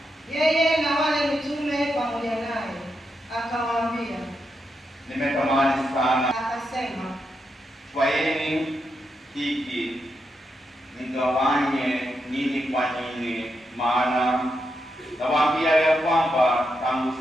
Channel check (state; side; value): normal; both; correlation 0.84